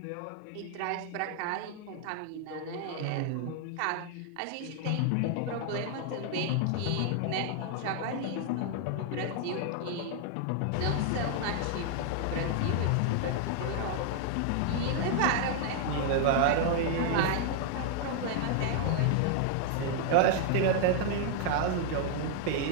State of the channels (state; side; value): different; both; correlation 0.00